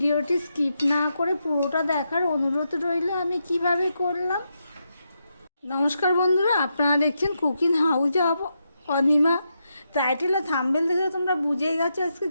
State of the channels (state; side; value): inverted; both; correlation -0.83